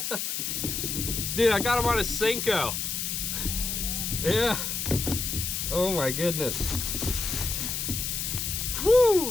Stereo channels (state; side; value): noise; left; hiss, 2 dB below the sound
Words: Dude, I got him on a Cinco. Yeah. Oh my goodness.